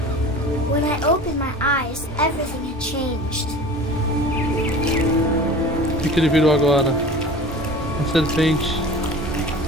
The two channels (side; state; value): both; normal; correlation 0.38